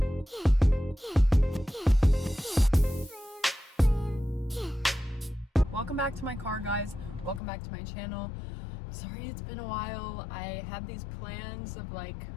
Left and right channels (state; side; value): drops out; right; at 7.4 s